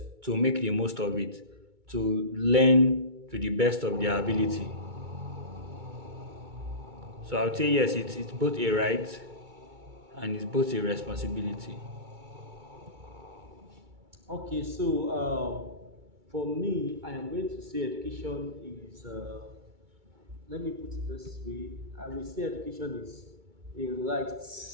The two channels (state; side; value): late; left; 2.2 ms